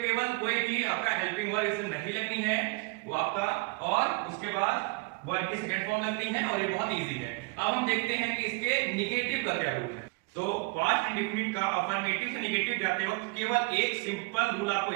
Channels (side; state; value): left; quieter; 27.3 dB